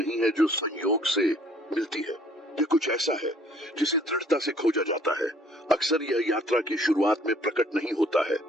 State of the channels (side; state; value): both; normal; correlation 0.59